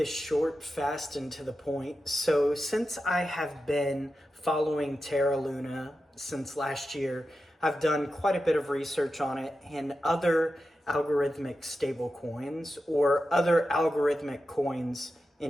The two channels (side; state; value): both; normal; correlation 0.91